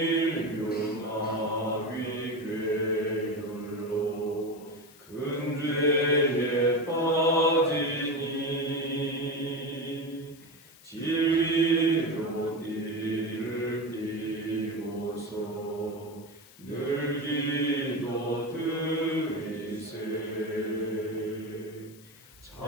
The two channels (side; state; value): left; noise; hiss, 23 dB below the sound